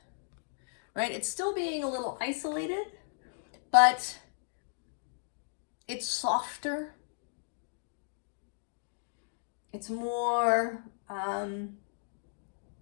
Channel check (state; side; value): silent; right; digital silence